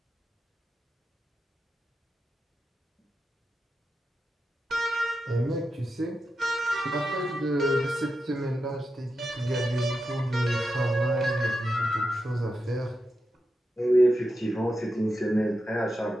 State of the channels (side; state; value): both; normal; correlation 0.88